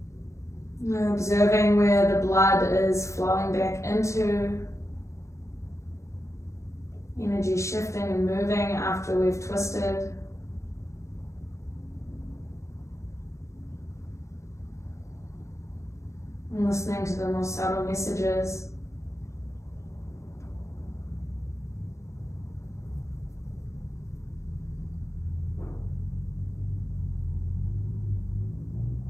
We're observing where the blood is flowing back into, energy shifting and moving after we've twisted. And listening to the more subtle messages.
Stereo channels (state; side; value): late; right; 0.14 ms